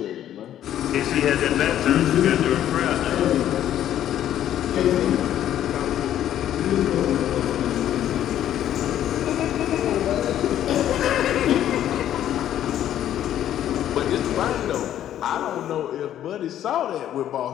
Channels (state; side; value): quieter; right; 11.4 dB